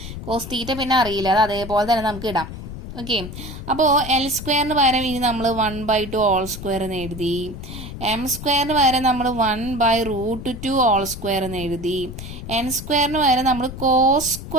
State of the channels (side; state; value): left; noise; rumble, 10 dB below the sound